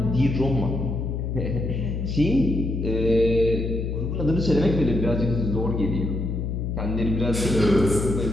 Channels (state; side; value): noise; left; hum, 2 dB below the sound